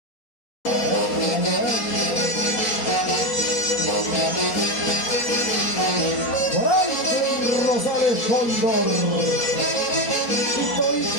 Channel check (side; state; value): right; late; 4.3 ms